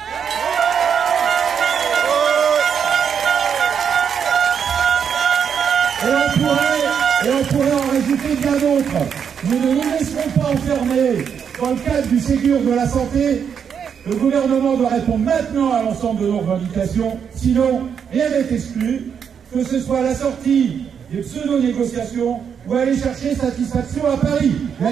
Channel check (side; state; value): left; quieter; 7.4 dB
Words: Et on pourrait en rajouter bien d'autres. Nous ne nous laisserons pas enfermer dans le cadre du Ségur de la santé. Le gouvernement doit répondre maintenant à l'ensemble de nos revendications, sinon rien n'est exclu, que ce soit la sortie des pseudo-négociations ou aller chercher satisfaction à Paris.